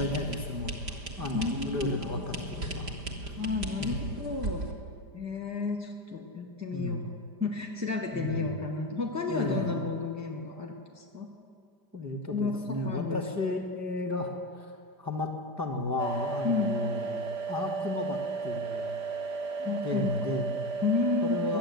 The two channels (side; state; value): left; late; 5.0 ms